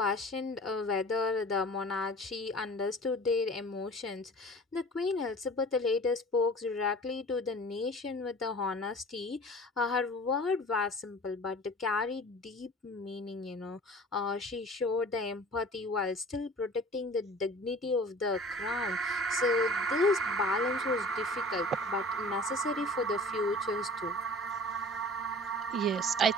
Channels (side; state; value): both; normal; correlation 0.43